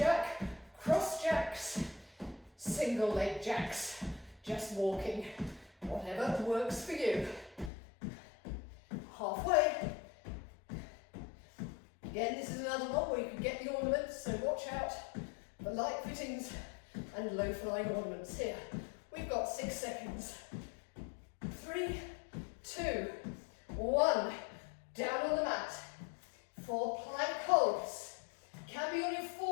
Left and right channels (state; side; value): drops out; right; at 7.7 s